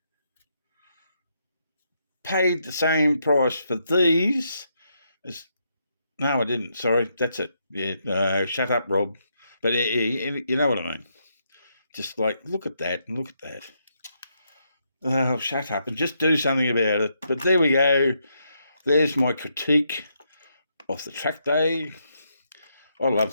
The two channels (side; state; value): both; inverted; correlation -0.79